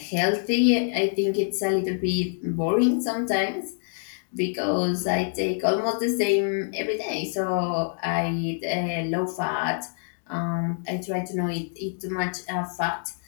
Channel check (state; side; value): silent; right; 61 dB below the other